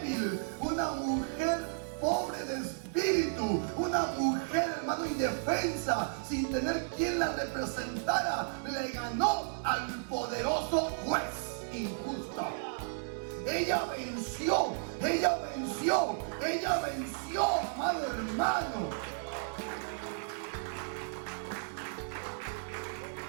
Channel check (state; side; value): silent; left; digital silence